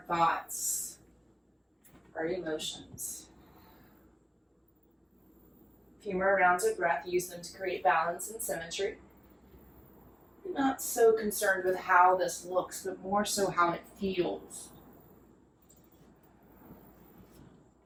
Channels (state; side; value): identical; both; correlation 1.00